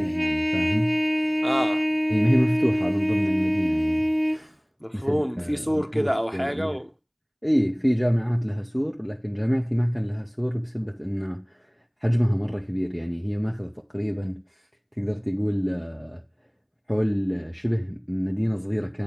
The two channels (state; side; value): identical; both; correlation 1.00